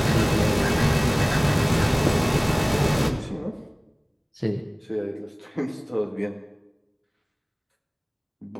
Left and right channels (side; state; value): both; identical; correlation 1.00